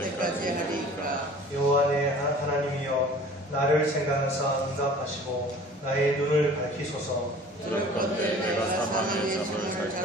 하리이까. 여호와 내 하나님이여 나를 생각하사 응답하시고 나의 눈을 밝히소서. 두렵건대 내가 사망의 잠을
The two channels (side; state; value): both; normal; correlation 0.46